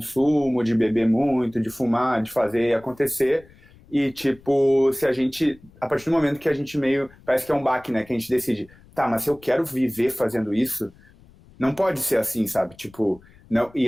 de beber muito, de fumar, de fazer acontecer. E, tipo, se a gente, a partir do momento que a gente meio, parece que é um baque, né, que a gente decide, tá, mas se eu quero viver fazendo isso, não pode ser assim, sabe? Tipo, não,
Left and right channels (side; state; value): left; noise; rumble, 26 dB below the sound